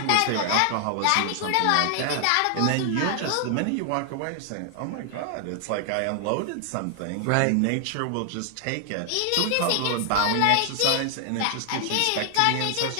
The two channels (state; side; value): different; both; correlation 0.00